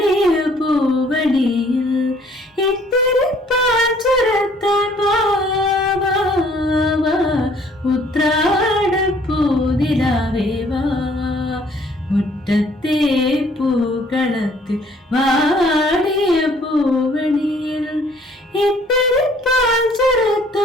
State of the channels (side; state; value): both; normal; correlation 0.60